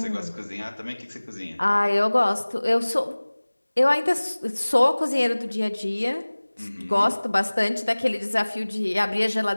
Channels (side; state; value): both; inverted; correlation -1.00